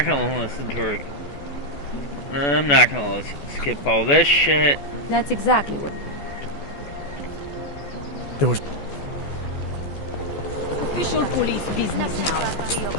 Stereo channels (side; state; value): right; late; 14 ms